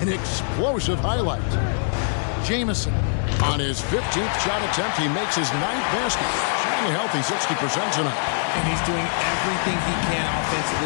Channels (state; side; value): silent; right; digital silence